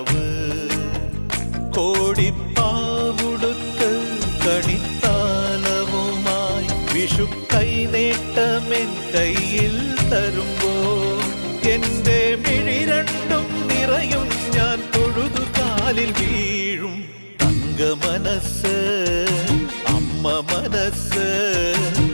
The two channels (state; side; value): inverted; both; correlation -1.00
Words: കോടിപ്പാവുടുത്ത് കണിത്താലവുമായി വിഷു കൈനേട്ടമെൻ കയ്യിൽ തരുമ്പോൾ എന്റെ മിഴി രണ്ടും നിറയും ഞാൻ തൊഴുതു കാലിൽ വീഴും തങ്കമനസ് അമ്മ മനസ്